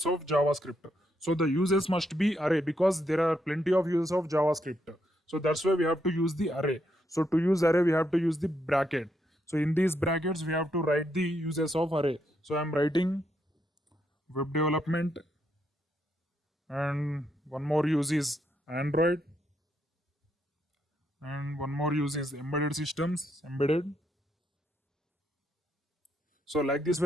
of JavaScript? So the uses must be array, because there are plenty of uses of JavaScript. So that's why we have to use the array. So to use array, we have to use the bracket. So in these brackets, we have to write the uses of array. So I'm writing web development, and one more use is Android, and one more use is embedded systems, embedded. So like this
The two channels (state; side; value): normal; both; correlation 0.78